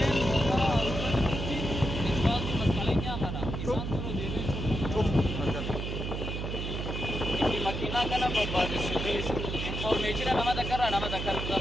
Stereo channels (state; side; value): noise; right; hum, 4 dB below the sound